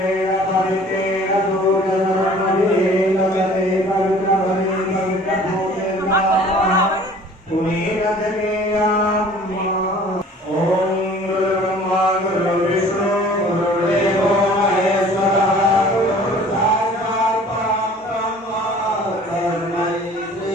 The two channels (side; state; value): both; normal; correlation 0.50